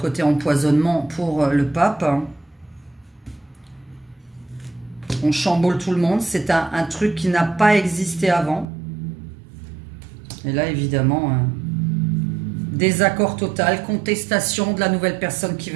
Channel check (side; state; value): left; drops out; at 8.7 s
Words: empoisonnement pour le pape. On chamboule tout le monde. C'est un truc qui n'a pas existé avant. Et là, évidemment, désaccord total, contestation de la nouvelle personne qui